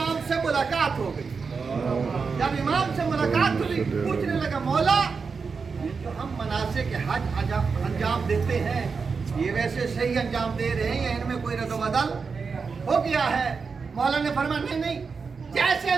سے ملاقات ہو گئی. جب امام سے ملاقات ہوئی پوچھنے لگا مولا یہ جو ہم مناسک حج انجام دیتے ہیں یہ ویسے صحیح انجام دے رہے ہیں یا ان میں کوئی رد و بدل ہو گیا ہے. مولا نے فرمایا نہیں جیسے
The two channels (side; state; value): left; quieter; 5.1 dB